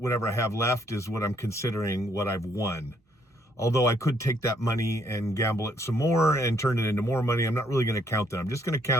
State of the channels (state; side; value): normal; both; correlation 0.69